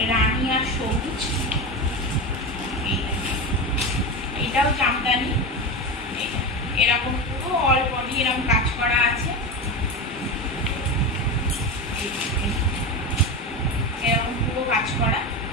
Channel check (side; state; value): both; normal; correlation 0.20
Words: রানী আর সবুজ। এটাও জামদানি, এরকম পুরো অল বডি এরকম কাজ করা আছে, এরকম পুরো কাজ করা।